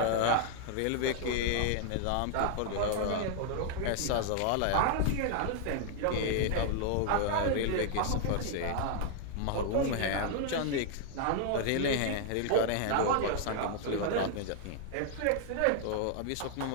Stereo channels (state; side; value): different; both; correlation 0.00